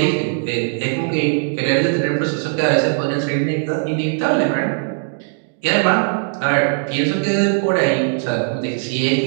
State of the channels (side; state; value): left; silent; digital silence